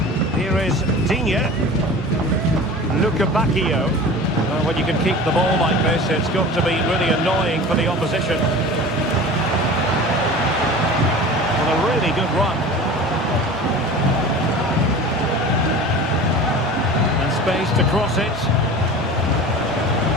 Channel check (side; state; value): both; normal; correlation 0.37